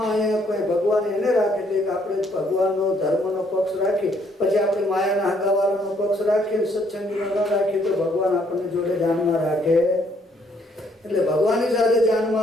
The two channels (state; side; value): normal; both; correlation 0.67